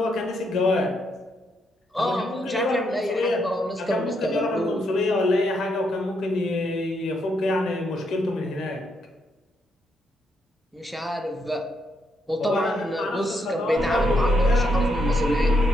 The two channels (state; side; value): normal; both; correlation 0.77